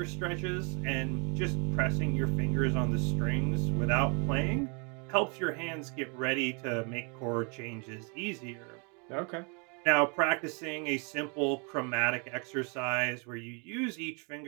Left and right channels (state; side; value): quieter; left; 34.4 dB